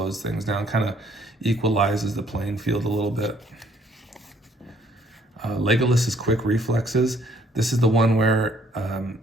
things down, kind of equalizes the playing field a little bit. Legolas's Quick Reflexes. This is the one where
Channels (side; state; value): both; normal; correlation 0.64